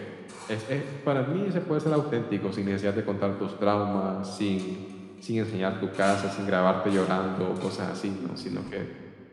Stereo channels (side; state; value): both; identical; correlation 1.00